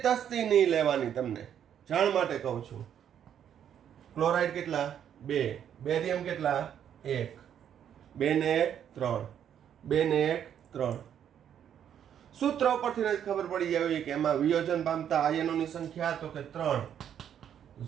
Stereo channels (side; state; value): left; quieter; 9.3 dB